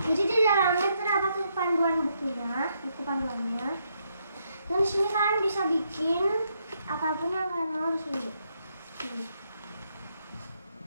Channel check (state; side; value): inverted; both; correlation -0.77